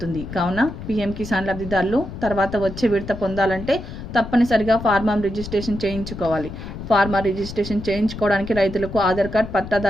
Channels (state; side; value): noise; left; rumble, 10 dB below the sound